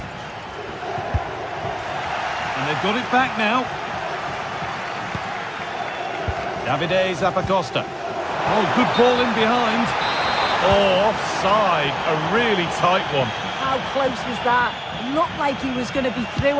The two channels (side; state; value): both; identical; correlation 1.00